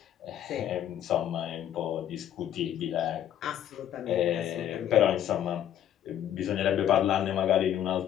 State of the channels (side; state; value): right; quieter; 10.7 dB